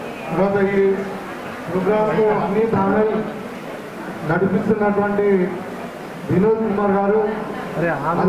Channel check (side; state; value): both; identical; correlation 1.00